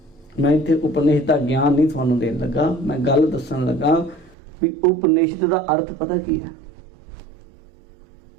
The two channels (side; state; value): left; drops out; at 4.4 s